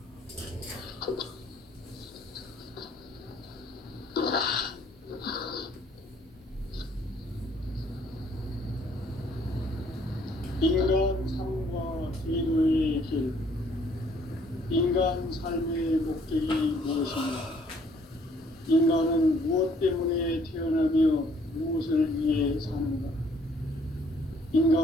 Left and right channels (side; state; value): both; normal; correlation 0.62